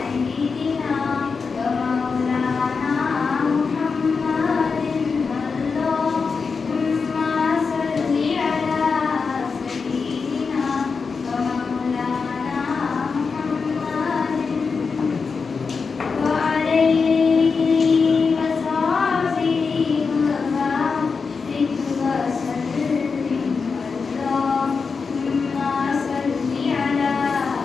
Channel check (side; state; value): right; quieter; 5.1 dB